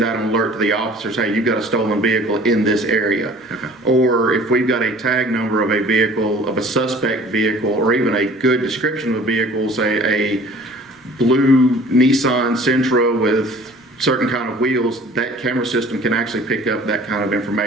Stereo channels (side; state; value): both; normal; correlation 0.48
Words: out an alert to the officers, hey, you've got a stolen vehicle in this area. Okay. Or if we've got a tag number of a vehicle, of a suspect vehicle, or even a good description of a vehicle, say a blue Nissan Sentra with certain kind of wheels, that camera system can actually pick up that kind of